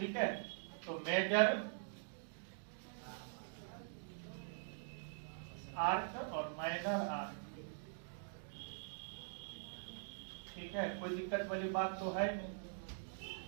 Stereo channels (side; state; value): left; silent; digital silence